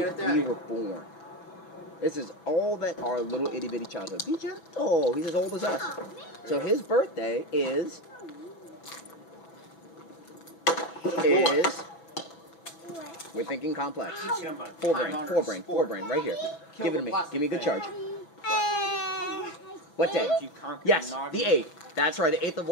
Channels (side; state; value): right; late; 5.7 ms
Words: we were born. This is all that our little itty-bitty child is. Be gentle. He's as old as us. So his birthday is... We're thinking complex. Forebrain, right here. Give it to me. Give me a good charge. What day? Yes, the 8th. That's right, the 8th of